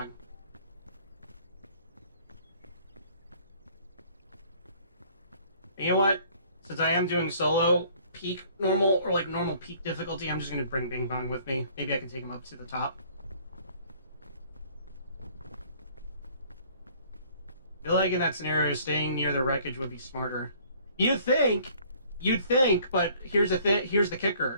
And you know what? Since I am doing solo peak normal, or like normal peak difficulty, I'm just gonna bring Bing Bong with me. Maybe I can take him up to the top. I feel like in that scenario, staying near the wreckage would be smarter. You'd think, but here's the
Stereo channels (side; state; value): both; inverted; correlation -0.57